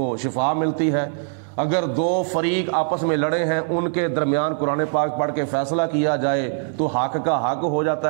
شفا ملتی ہے۔ اگر دو فریق آپس میں لڑے ہیں ان کے درمیان قرآن پاک پڑھ کے فیصلہ کیا جائے تو حق کا حق ہو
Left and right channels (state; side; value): silent; left; digital silence